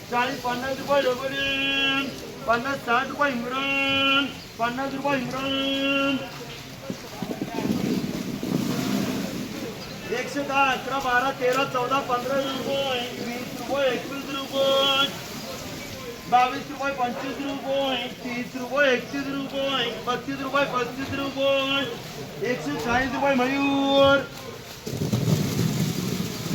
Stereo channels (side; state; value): both; identical; correlation 1.00